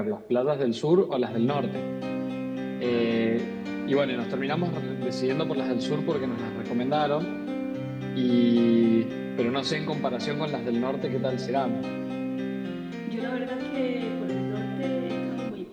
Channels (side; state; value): both; identical; correlation 1.00